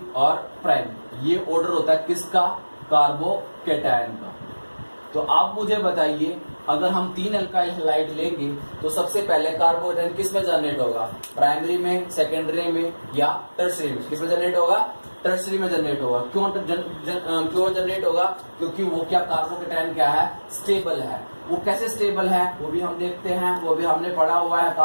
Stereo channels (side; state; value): both; inverted; correlation -1.00